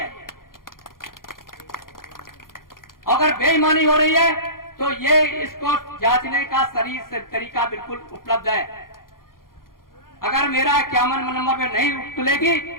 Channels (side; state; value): right; late; 0.91 ms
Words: अगर बेईमानी हो रही है तो ये इसको जांचने का सही तरीका बिल्कुल उपलब्ध है। अगर मेरा 51 नंबर पे नहीं तुलेगी